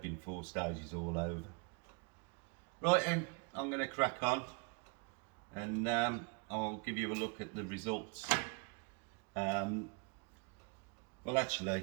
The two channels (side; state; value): left; quieter; 32.7 dB